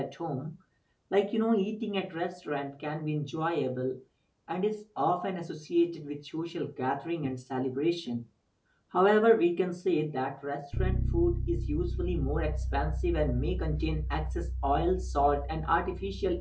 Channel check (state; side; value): identical; both; correlation 1.00